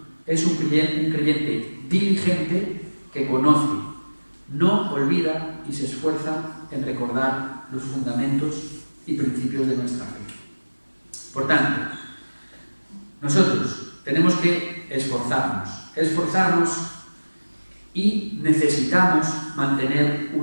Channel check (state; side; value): inverted; both; correlation -1.00